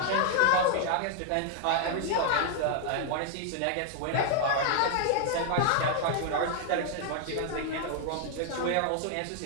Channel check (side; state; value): both; different; correlation 0.00